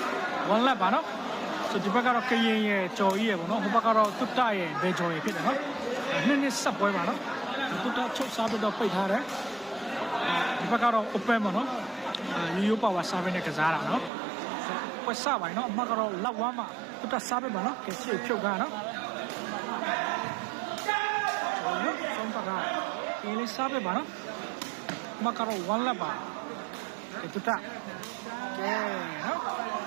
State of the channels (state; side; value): drops out; left; at 14.1 s